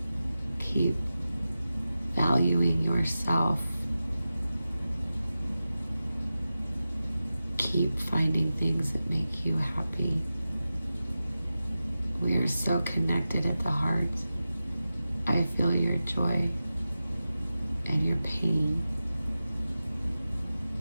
Keep valuing yourself. Keep finding things that make you happy. We are so connected at the heart. I feel your joy and your pain.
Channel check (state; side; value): inverted; both; correlation -0.94